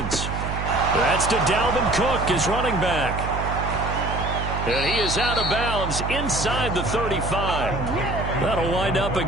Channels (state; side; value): noise; right; hum, 4 dB below the sound